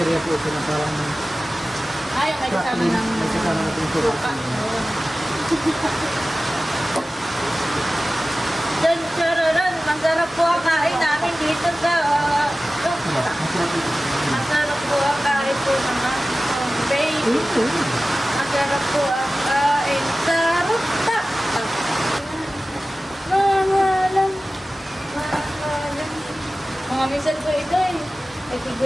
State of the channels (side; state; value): both; normal; correlation 0.96